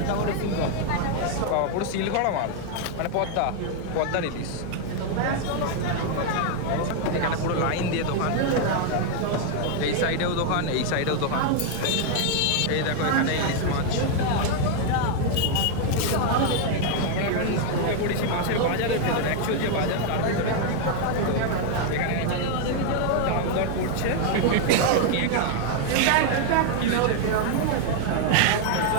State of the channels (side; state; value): both; different; correlation 0.00